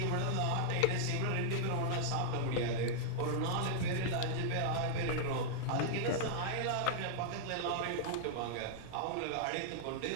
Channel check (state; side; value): different; both; correlation -0.01